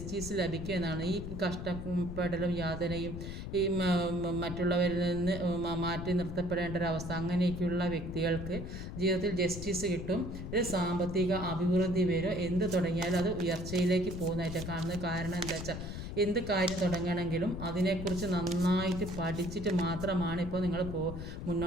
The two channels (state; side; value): noise; left; rumble, 7 dB below the sound